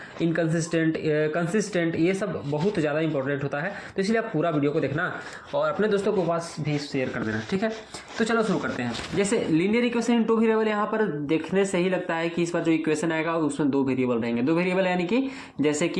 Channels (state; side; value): identical; both; correlation 1.00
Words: इनकंसिस्टेंट, कंसिस्टेंट, ये सब बहुत ज़्यादा इंपॉर्टेंट होता है। तो इसलिए आप पूरा वीडियो को देखना और अपने दोस्तों के पास भी शेयर कर देना, ठीक है। तो चलो शुरू करते हैं। जैसे linear equation in two variable, यहाँ पर देखने से ही लगता है कि इस बार जो इक्वेशन आएगा उसमें दो वेरिएबल रहेंगे। दो वेरिएबल यानी कि जैसे